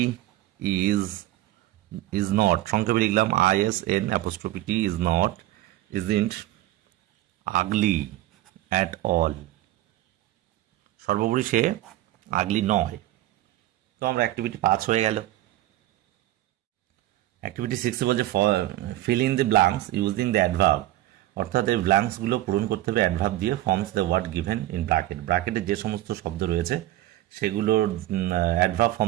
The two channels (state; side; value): quieter; left; 15.5 dB